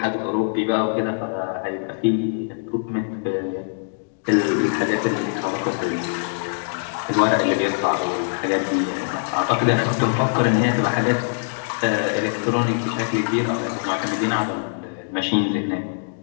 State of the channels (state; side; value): silent; right; digital silence